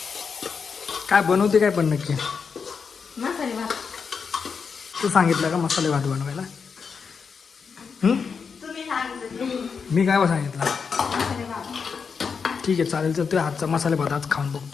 काय बनवते काय पण नक्की मसाले भात. तू सांगितलं का मसाले भात बनवायला? तुम्ही सांगितलं मी काय सांगितलं? मसाले भात. ठीक आहे चालेल. तर तुझ्या हातचा मसाले भात आज खाऊन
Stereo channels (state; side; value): quieter; right; 5.8 dB